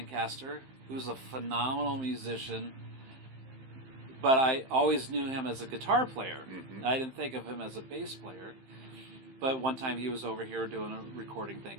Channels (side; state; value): left; late; 15 ms